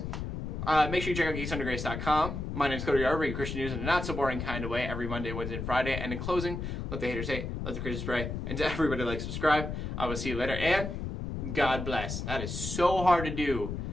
make sure you check out geeksundergrace.com. My name is Cody, I bring you Christian news in a not so boring kind of way every Monday, Wednesday, and Friday. And in closing, let the haters hate, let the Christians pray, and to everybody like, subscribe. I will see you later, and God bless. That is so hard to do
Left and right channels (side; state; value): left; noise; rumble, 5 dB below the sound